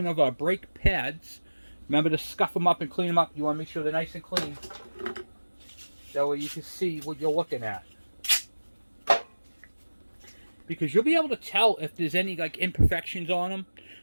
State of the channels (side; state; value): both; inverted; correlation -1.00